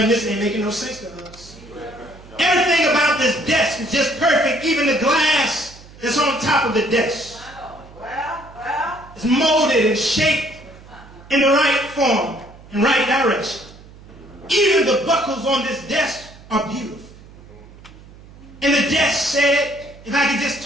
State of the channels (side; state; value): right; noise; hum, 21 dB below the sound